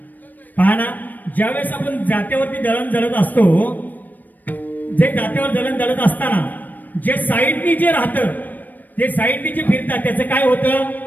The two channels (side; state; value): right; late; 0.086 ms